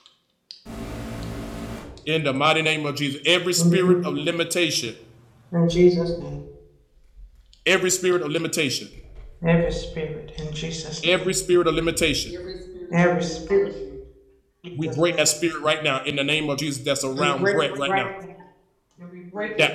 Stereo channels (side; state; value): both; identical; correlation 1.00